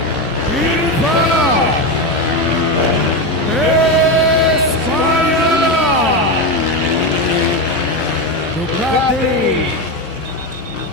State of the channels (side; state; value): both; normal; correlation 0.14